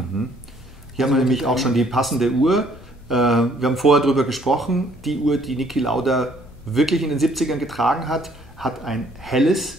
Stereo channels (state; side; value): normal; both; correlation 0.63